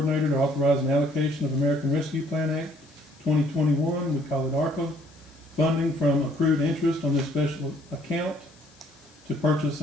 to authorize an allocation of American Rescue Plan Act 2021, we call it ARPA, funding from accrued interest on this special account to purchase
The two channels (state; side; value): noise; left; hiss, 28 dB below the sound